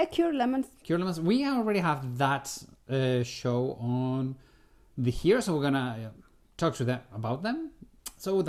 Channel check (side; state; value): both; identical; correlation 1.00